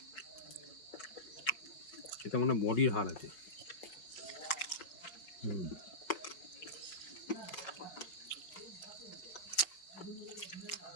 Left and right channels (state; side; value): late; right; 5.2 ms